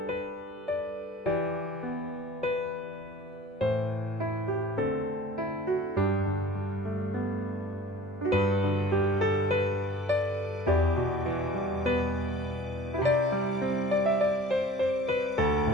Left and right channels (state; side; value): normal; both; correlation 0.44